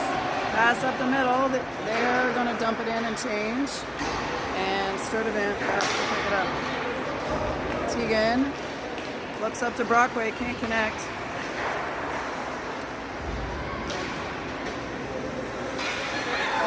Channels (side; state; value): both; identical; correlation 1.00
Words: Pass up the middle. They're going to dump it in and change. And Sturdivant has to pick it up. Tegan looks up to Brockway, can't connect.